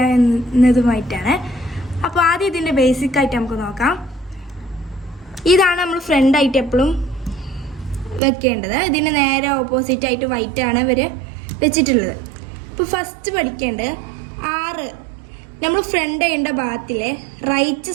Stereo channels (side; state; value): left; drops out; at 8.2 s